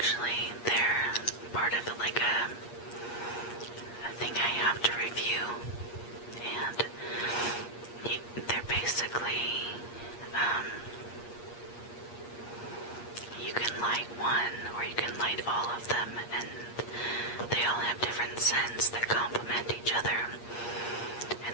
They're part of like a thing I have to review, and they're basically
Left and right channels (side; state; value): right; late; 8.5 ms